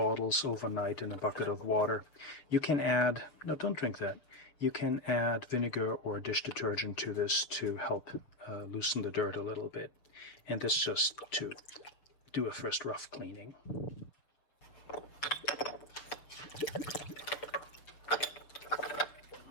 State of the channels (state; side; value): late; right; 7.0 ms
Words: overnight in a bucket of water. You can add, no, don't drink that. You can add vinegar or dish detergent to this to help loosen the dirt a little bit. And this just to do a first rough cleaning.